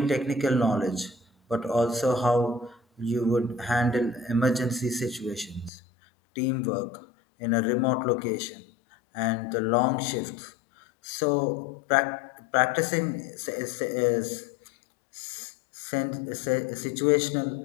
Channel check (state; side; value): drops out; right; at 5.7 s